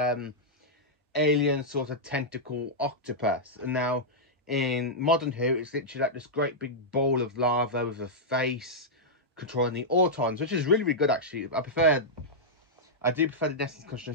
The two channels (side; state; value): both; normal; correlation -0.09